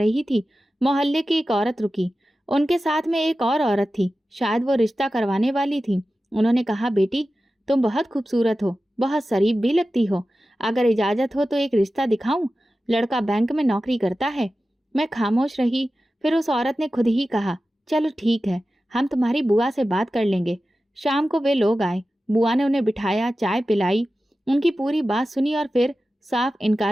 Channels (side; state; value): both; normal; correlation 0.94